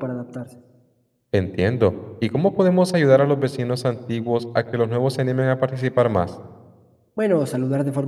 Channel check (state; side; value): identical; both; correlation 1.00